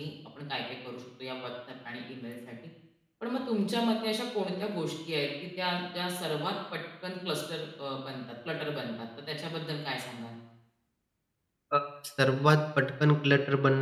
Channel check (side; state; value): both; identical; correlation 1.00